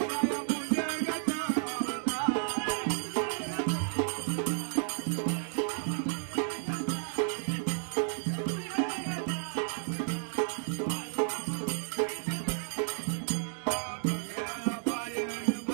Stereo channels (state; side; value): silent; left; digital silence